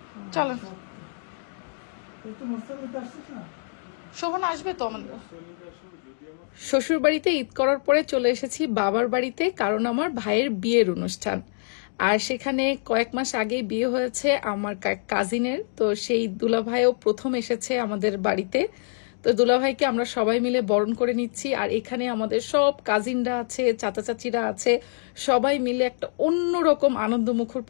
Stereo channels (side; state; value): right; silent; digital silence